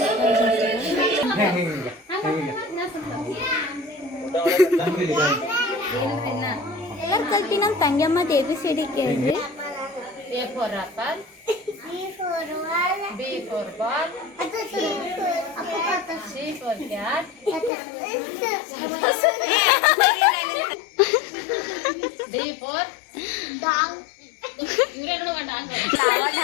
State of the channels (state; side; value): drops out; right; at 17.7 s